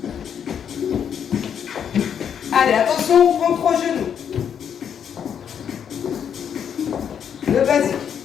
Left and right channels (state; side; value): quieter; right; 8.2 dB